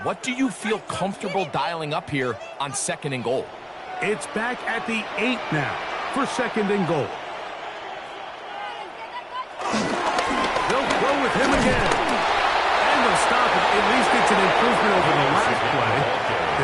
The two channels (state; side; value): identical; both; correlation 1.00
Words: what do you feel comfortable dialing up here on second and goal. It's back at the 8 now for second and goal. They'll go with him again. And they'll stop it. At least it's an improvement over the last play.